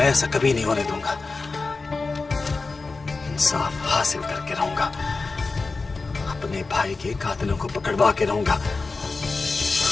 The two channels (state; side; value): quieter; right; 3.9 dB